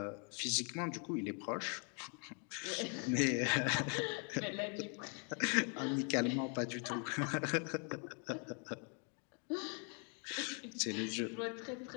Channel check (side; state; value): right; quieter; 39.5 dB